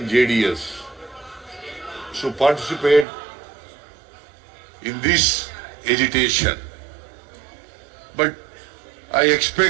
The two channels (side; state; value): left; drops out; at 3.1 s